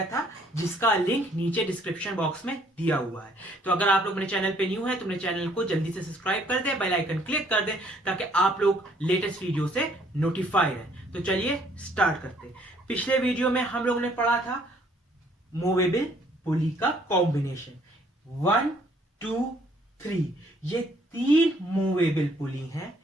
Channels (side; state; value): both; normal; correlation 0.63